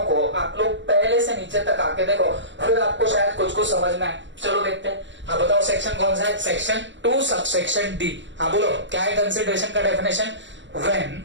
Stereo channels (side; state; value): left; late; 0.54 ms